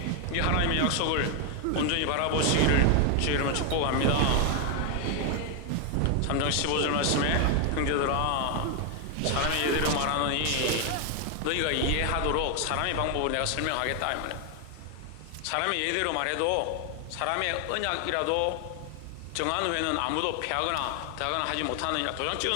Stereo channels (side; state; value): both; different; correlation 0.01